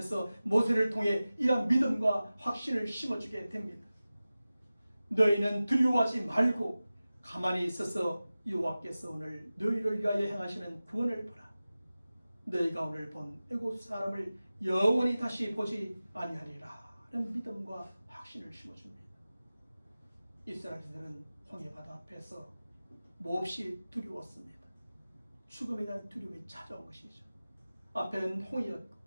모세를 통해 이런 믿음과 확신을 심어주게 됩니다. 너희는 두려워하지 말고 가만히 있어서 여호와께서 오늘 너희를 위하여 행하시는 구원을 보라. 너희가 오늘 본 애굽 사람을 영원히 다시 보지 아니하리라 하는 믿음과 확신을 심어줍니다. 이스라엘인들은 홍해바다 앞에서 몹시 두려웠습니다. 죽음에 대한 두려움이 찾아온 것이죠. 앞에는 홍해였고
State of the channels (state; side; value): inverted; both; correlation -0.96